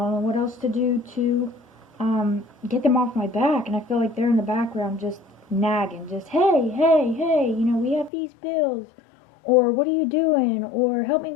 know what else to do to get them off my back. And I feel like they're in the background just nagging, just, hey, we have these bills, or what are you doing, or help me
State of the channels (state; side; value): drops out; right; at 8.1 s